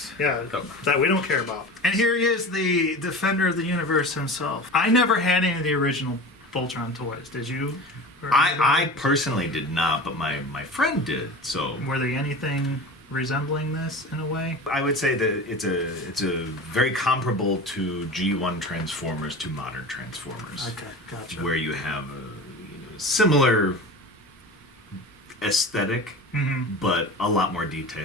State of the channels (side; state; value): both; normal; correlation 0.33